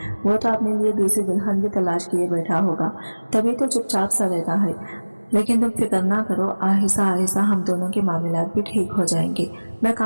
वो तो अपने लिए दूसरी दुल्हन भी तलाश किए बैठा होगा, तभी तो चुपचाप सा रहता है। लेकिन तुम फिक्र ना करो, आहिस्ता आहिस्ता हम दोनों के मामलात भी ठीक हो जाएंगे। मैं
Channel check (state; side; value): inverted; both; correlation -1.00